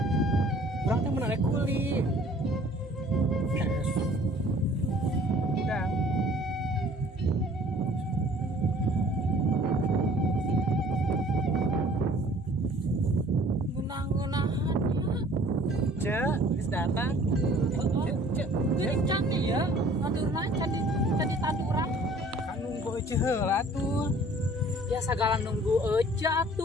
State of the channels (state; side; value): normal; both; correlation 0.53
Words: Urang teh menarik kuli. Udah. Ngenah-ngenahannya. Ceu, geus datang. Jadi candi ya, nandurna candi tanduran. Kan nunggu ece heula tuh. Ya sagala nunggu aja